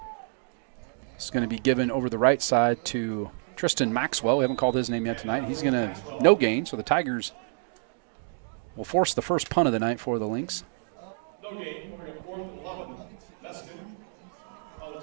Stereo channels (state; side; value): silent; left; digital silence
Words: It's going to be given over the right side to Tristan Maxwell. We haven't called his name yet tonight. He's going to no gain, so the Tigers will force the first punt of the night for the Lynx.